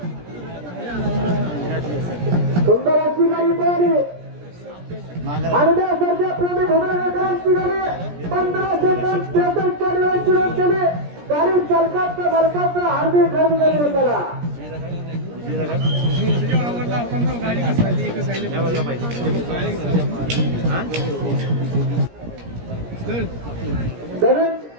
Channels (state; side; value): late; left; 17 ms